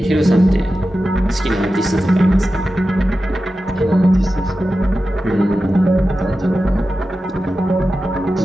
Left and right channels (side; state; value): both; normal; correlation 0.93